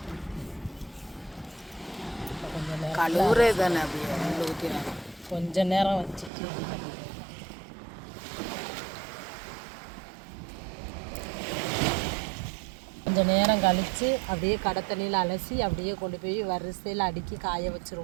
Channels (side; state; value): left; drops out; at 6.3 s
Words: கொஞ்ச நேரம் வச்சுட்டு கொஞ்சம் நேரம் கழித்து அப்படியே கடை தண்ணியில் அலசி அப்படியே கொண்டு போய் வரிசையில் அடுக்கி காய